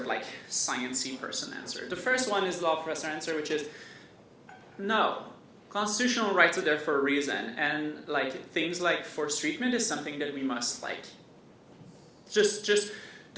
like sciencey person answer. The first one is the law professor answer, which is no. Constitutional rights are there for a reason, and like things like forced treatment is something that we must like just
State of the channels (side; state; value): both; identical; correlation 1.00